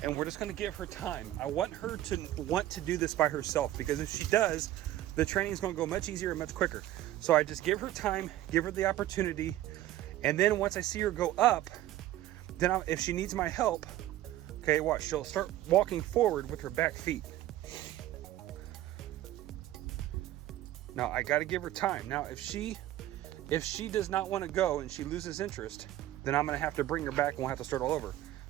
And we're just gonna give her time. I want her to want to do this by herself, because if she does, the training is gonna go much easier and much quicker. So I just give her time, give her the opportunity, and then once I see her go up, then if she needs my help, okay, watch, she'll start walking forward with her back feet. Now I gotta give her time. Now if she does not wanna go and she loses interest, then I'm gonna have to bring her back and we'll have to start all over.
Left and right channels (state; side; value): quieter; left; 14.2 dB